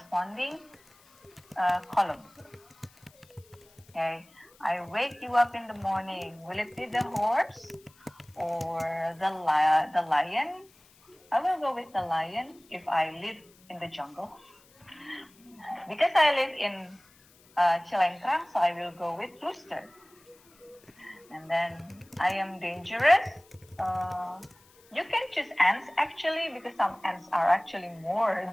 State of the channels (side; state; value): left; noise; hiss, 28 dB below the sound